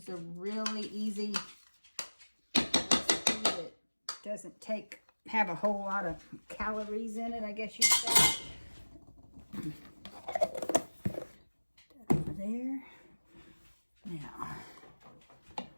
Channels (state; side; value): inverted; both; correlation -1.00